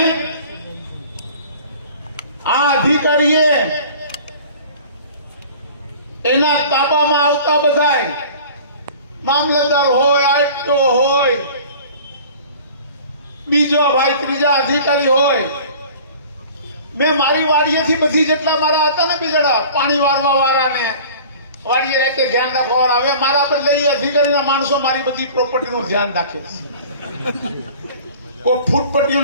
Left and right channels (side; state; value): both; inverted; correlation -0.44